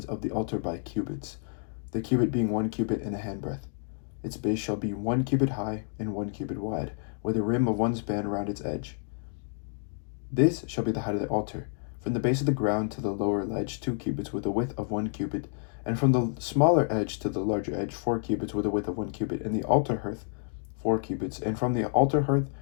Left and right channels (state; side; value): silent; right; digital silence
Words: of the altar by cubits, the cubit being 1 cubit and a handbreadth. Its base shall be 1 cubit high and 1 cubit wide, with a rim of 1 span around its edge. This shall be the height of the altar, from the base of the ground to the lower ledge 2 cubits with a width of 1 cubit, and from the smaller edge to the larger edge 4 cubits with a width of 1 cubit, and the altar hearth 4 cubits, and from the altar hearth